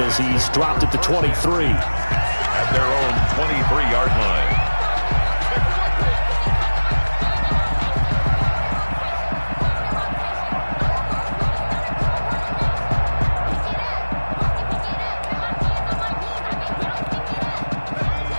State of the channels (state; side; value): inverted; both; correlation -1.00